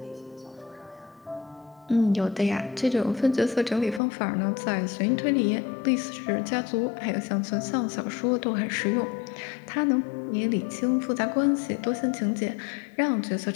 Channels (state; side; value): drops out; right; at 4.0 s